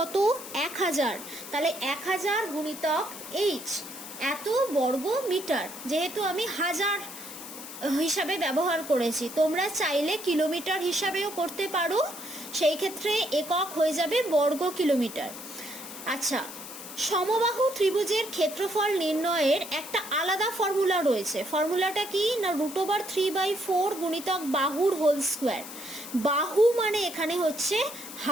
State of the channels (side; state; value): left; noise; hiss, 12 dB below the sound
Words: 1000। তাহলে 1000 গুণিতক h, এত বর্গ মিটার। যেহেতু আমি হাজার হিসাবে ব্যবহার করেছি, তোমরা চাইলে কিলোমিটার হিসাবেও করতে পারো, সেই ক্ষেত্রে একক হয়ে যাবে বর্গ কিলোমিটার। আচ্ছা, সমবাহু ত্রিভুজের ক্ষেত্রফল নির্ণয়ের একটা আলাদা ফর্মুলা রয়েছে। ফর্মুলাটা কি? না √3/4 গুণিতক বাহুর হোল স্কোয়ার। বাহু মানে এখানে হচ্ছে